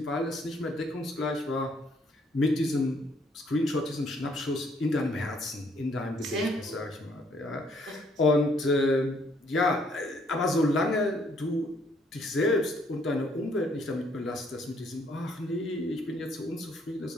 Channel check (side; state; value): both; normal; correlation 0.66